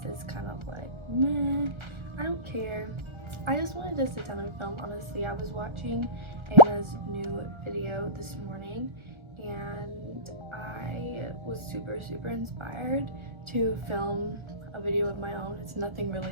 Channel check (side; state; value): left; late; 1.3 ms